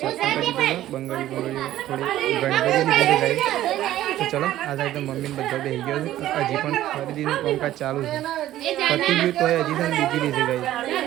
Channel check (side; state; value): left; quieter; 13.7 dB